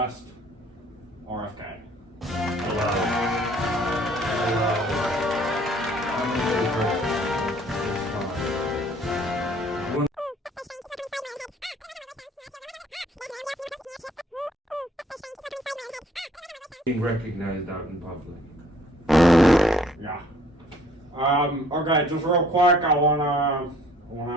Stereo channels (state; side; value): normal; both; correlation 0.58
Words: RFK. Hello. I'm a good person. Being recognized out in public. Yeah. Okay, just real quick, I wanna